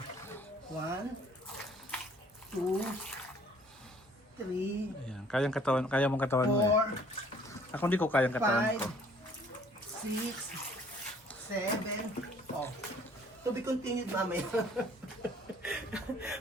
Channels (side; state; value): both; normal; correlation 0.57